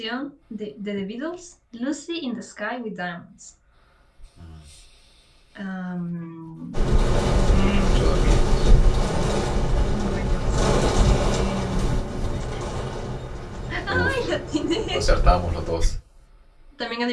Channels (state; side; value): identical; both; correlation 1.00